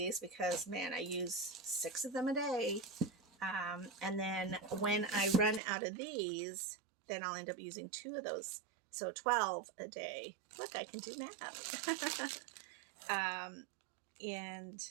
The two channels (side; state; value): left; drops out; at 5.6 s